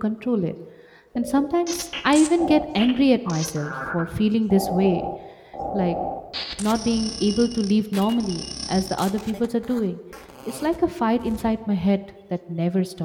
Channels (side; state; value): both; identical; correlation 1.00